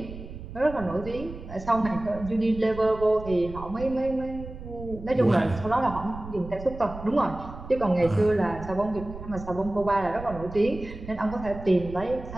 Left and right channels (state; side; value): noise; right; rumble, 12 dB below the sound